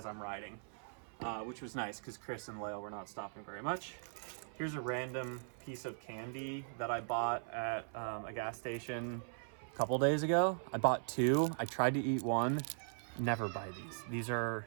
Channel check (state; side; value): silent; left; 51 dB below the other